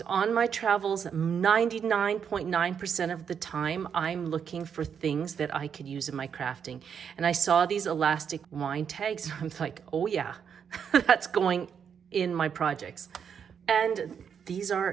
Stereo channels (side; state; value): left; quieter; 7.4 dB